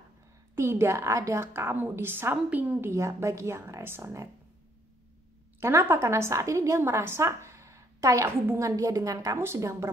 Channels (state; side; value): normal; both; correlation 0.68